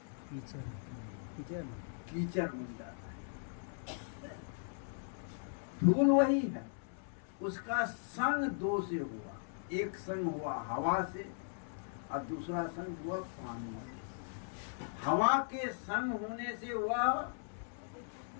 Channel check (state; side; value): silent; right; 52 dB below the other